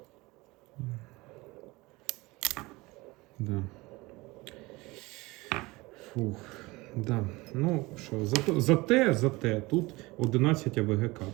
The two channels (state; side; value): quieter; left; 22.2 dB